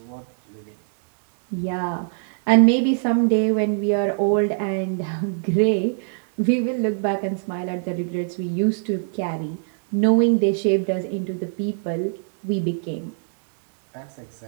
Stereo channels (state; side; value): silent; left; 64 dB below the other